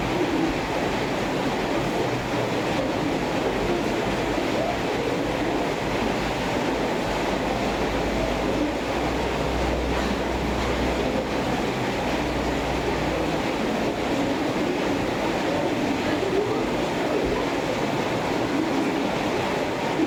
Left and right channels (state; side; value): identical; both; correlation 1.00